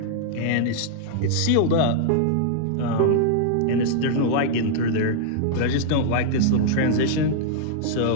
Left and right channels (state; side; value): different; both; correlation -0.01